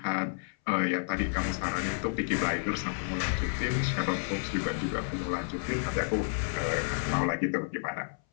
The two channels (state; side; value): silent; right; 57 dB below the other